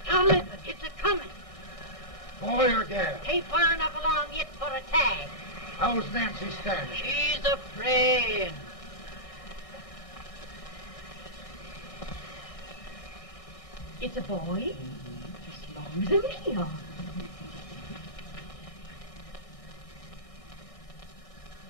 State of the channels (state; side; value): late; right; 1.6 ms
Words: Tom Lincoln, it's a-coming. Boy or gal? Ain't far enough along yet for a tag. How's Nancy standing? She's afraid. It's a boy? As long as a neon.